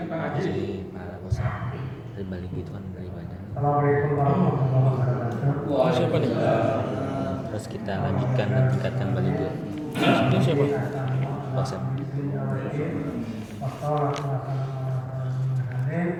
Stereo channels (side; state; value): both; identical; correlation 1.00